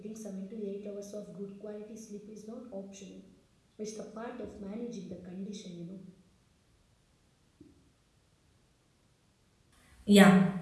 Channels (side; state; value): both; identical; correlation 1.00